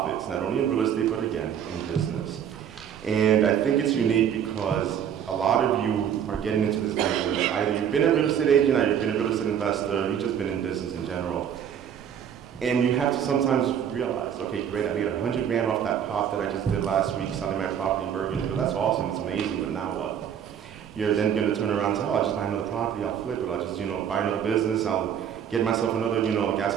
not only in real estate, but again, in business. And I think it's unique because a lot of you are getting into this business. Either you've been a real estate agent, or you've been a real estate investor, you've just been in business in general. And you have to sometimes realize, okay, great, I made $100 grand off that pop that I just did last week selling my property in Bergen. That's awesome, it's amazing, but now what? You're then going to turn around and say, oh, I'll just buy another property, I'll flip it, I'll just, buy another business, I'll get myself another,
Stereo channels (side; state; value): left; quieter; 8.8 dB